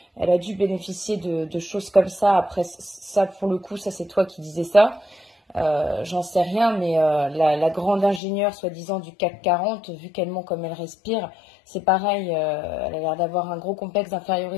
Elle a dû bénéficier de choses comme ça. Après, ça, pour le coup, ça, c'est toi qui disais ça. J'en sais rien, mais la grande ingénieure, soi-disant, du CAC 40, vu qu'elle ment comme elle respire, c'est pareil. Elle a l'air d'avoir un gros complexe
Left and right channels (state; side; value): drops out; right; at 8.2 s